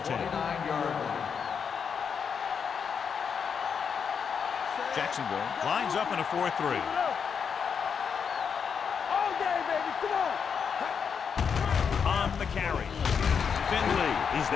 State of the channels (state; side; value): quieter; right; 6.7 dB